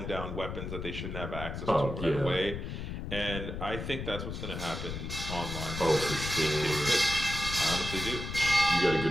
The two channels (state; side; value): noise; left; rumble, 6 dB below the sound